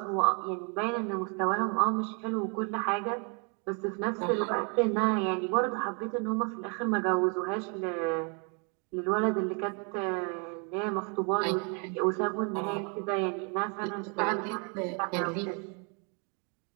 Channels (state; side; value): quieter; left; 36.3 dB